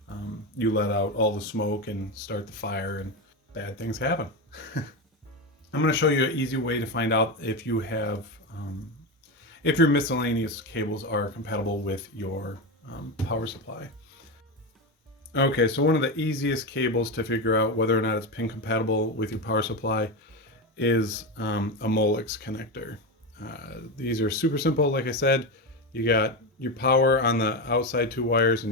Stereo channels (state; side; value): normal; both; correlation 0.16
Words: you let out all the smoke and start the fire and bad things happen. I'm going to show you an easy way to find out if you have, if your miscellaneous cables are compatible with your power supply. Okay, so one of the easiest cables to figure out whether or not it's pin compatible with your power supply is a Molex connector. These are super simple. Like I said, you got your power on the outside 2 wires and